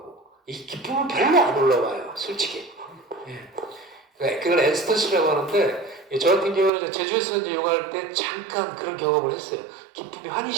이 기쁨은 별로 안 올라와요. 솔직히. 예. 그걸 엔스터시라고 하는데 저 같은 경우는 제주에서 이제 요가할 때 잠깐 그런 경험을 했어요. 기쁨이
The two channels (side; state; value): left; drops out; at 6.7 s